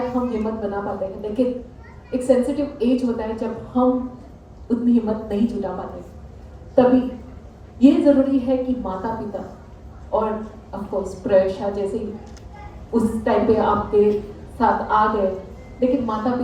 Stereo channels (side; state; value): both; identical; correlation 1.00